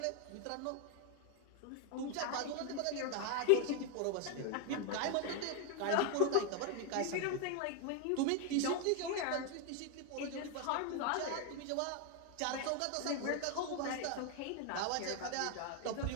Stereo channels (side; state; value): both; different; correlation 0.01